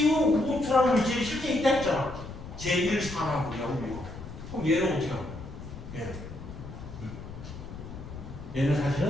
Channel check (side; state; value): left; noise; rumble, 12 dB below the sound